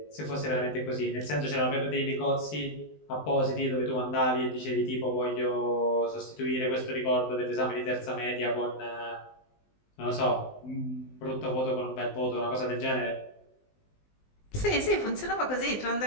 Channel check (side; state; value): right; late; 20 ms